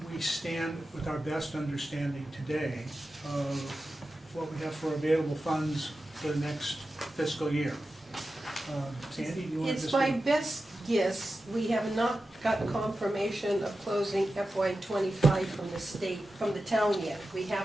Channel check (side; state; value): both; normal; correlation 0.93